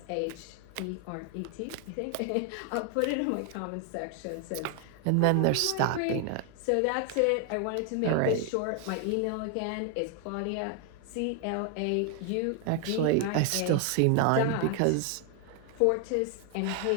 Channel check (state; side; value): different; both; correlation 0.00